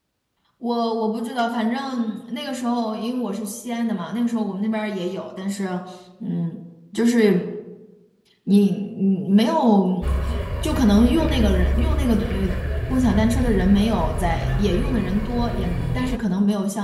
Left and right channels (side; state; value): both; identical; correlation 1.00